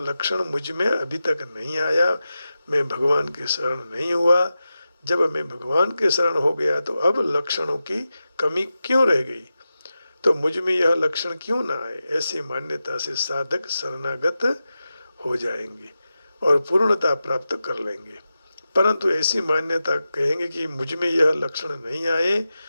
मुझ में अभी तक नहीं आया, मैं भगवान के शरण नहीं हुआ। जब मैं भगवान के शरण हो गया तो अब लक्षणों की कमी क्यों रह गई, तो मुझ में यह लक्षण क्यों ना आए? ऐसी मान्यता से साधक शरणागत हो जाएंगे और पूर्णता प्राप्त कर लेंगे। परंतु ऐसी मान्यता कहेंगे कि मुझ में यह लक्षण नहीं आए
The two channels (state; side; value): inverted; both; correlation -0.92